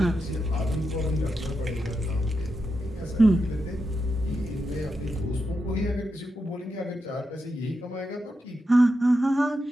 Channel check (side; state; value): both; normal; correlation 0.87